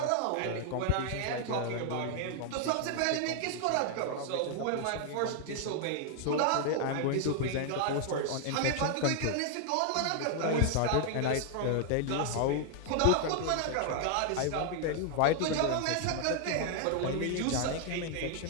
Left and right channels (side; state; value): both; different; correlation 0.00